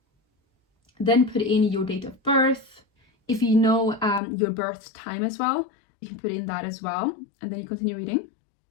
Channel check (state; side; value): drops out; right; at 4.2 s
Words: Then put in your date of birth. If you know your birth time as well, you can put in that as well. And then you continue reading.